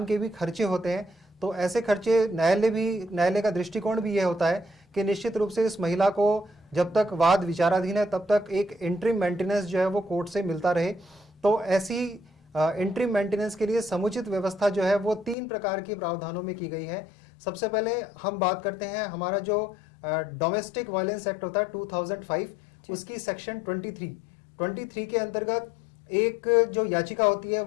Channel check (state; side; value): drops out; right; at 15.4 s